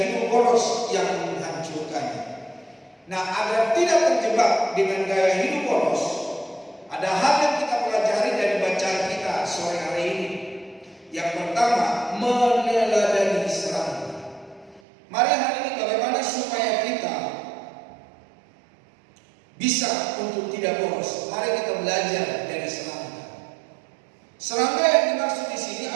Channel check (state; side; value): drops out; left; at 14.8 s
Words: hidup boros yang menghancurkannya. Nah, agar tidak terjebak dengan gaya hidup boros, ada hal yang kita pelajari dari bacaan kita sore hari ini. Yang pertama, meneladani serangga. Mari hari ini bagaimana supaya kita bisa untuk tidak boros. Mari kita belajar dari serangga. Serangga yang dimaksud di sini